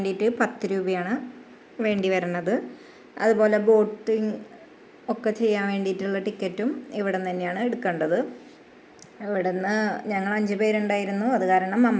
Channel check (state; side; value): identical; both; correlation 1.00